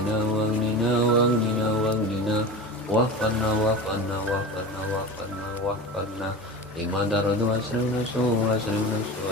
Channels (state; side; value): normal; both; correlation 0.30